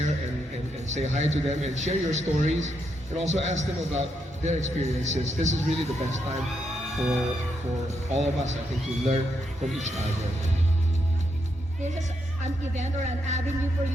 and say hi to them and share your stories and also ask them about their experiences. This is really the best time for all of us, I think, to learn from each other. This is an event or an avenue for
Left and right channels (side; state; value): both; normal; correlation 0.80